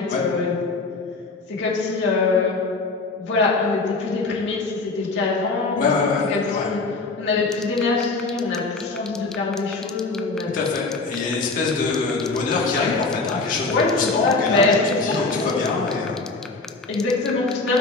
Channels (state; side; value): quieter; right; 3.6 dB